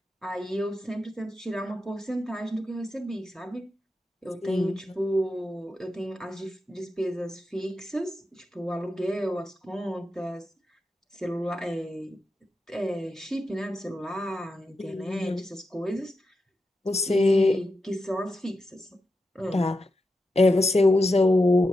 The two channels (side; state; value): both; normal; correlation 0.88